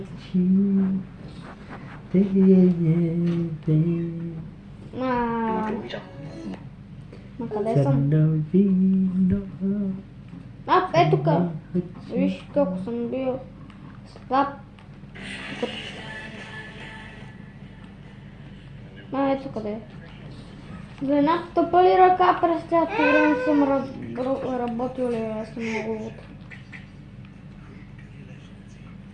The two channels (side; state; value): both; identical; correlation 1.00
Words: На къде съм? сърно вино. Е тук. Виж колко съм бил слаб. Ето къде. За една тъпа ли ръка през цялото време съм работил ли, аз съм много луд.